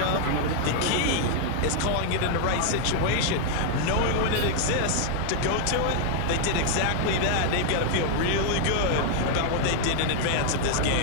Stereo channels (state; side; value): different; both; correlation 0.00